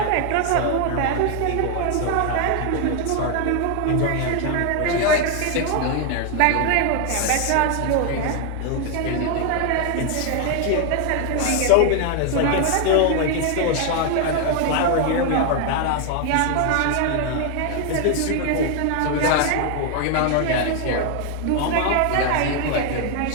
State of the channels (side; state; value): both; different; correlation 0.01